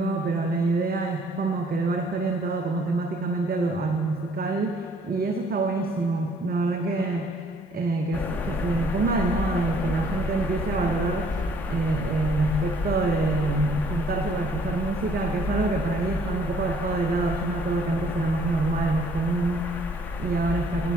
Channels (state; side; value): normal; both; correlation 0.61